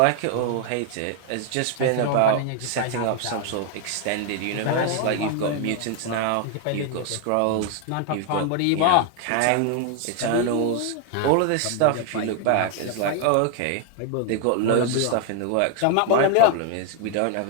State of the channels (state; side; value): different; both; correlation 0.00